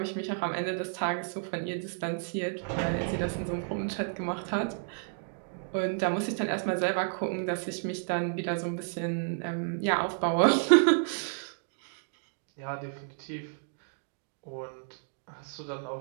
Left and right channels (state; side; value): silent; left; digital silence